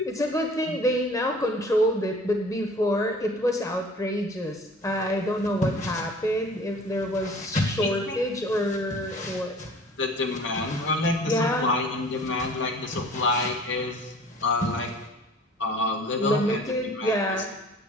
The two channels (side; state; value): both; normal; correlation 0.48